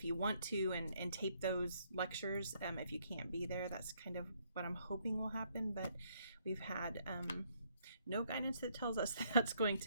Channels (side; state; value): both; inverted; correlation -0.70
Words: you want to and tape those lectures. If you can't be there, that's kind of what I'm hoping will happen. But we've had no guidance that tells us that's going